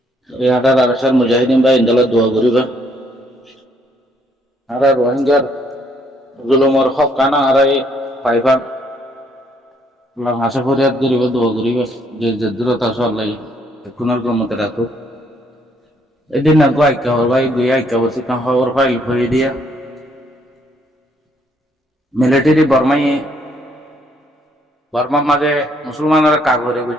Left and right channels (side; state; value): both; normal; correlation 0.69